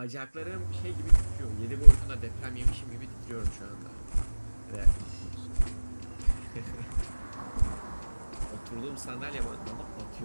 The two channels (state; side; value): inverted; both; correlation -1.00